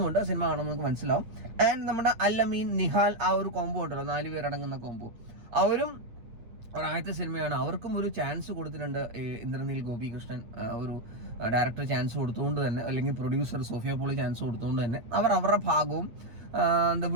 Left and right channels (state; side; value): late; left; 8.7 ms